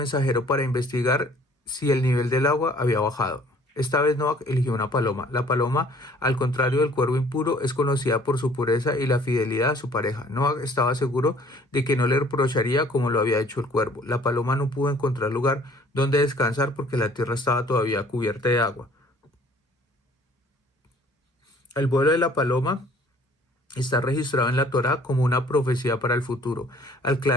para investigar si el nivel del agua había bajado. Esta vez Noah eligió una paloma. La paloma, al contrario del cuervo impuro, es conocida por su pureza y la fidelidad a su pareja. Noah estaba seguro de que no le reprocharía como lo había hecho el cuervo. La paloma no pudo encontrar lugar donde descansar porque la tierra estaba todavía cubierta de agua. El vuelo de la paloma está registrado en la Torá como una profecía para el futuro. Al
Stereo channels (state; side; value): normal; both; correlation 0.55